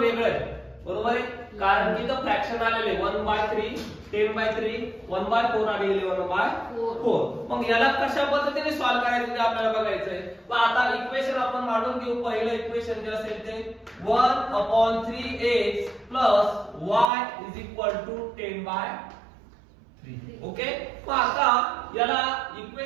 आहे, बरोबर आहे, कारण की इथं फ्रॅक्शन आलेले 1/3, 10/3, 1/4 आणि 11/4. मग याला कशा पद्धतीने सॉल्व्ह करायचं ते आपल्याला बघायचंय. मग आता इक्वेशन आपण मांडून घेऊ. पहिलं इक्वेशन जे असेल ते 1/3x + y = 10/3. ओके. मग आता याला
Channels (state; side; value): drops out; left; at 17.1 s